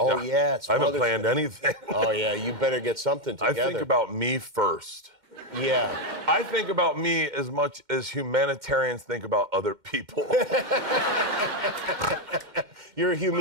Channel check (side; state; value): left; late; 2.1 ms